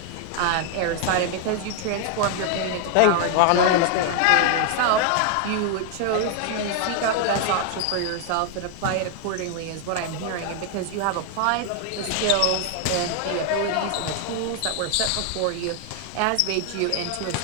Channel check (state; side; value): different; both; correlation 0.00